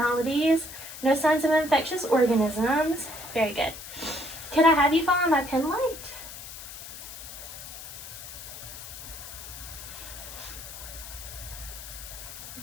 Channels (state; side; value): noise; left; hiss, 12 dB below the sound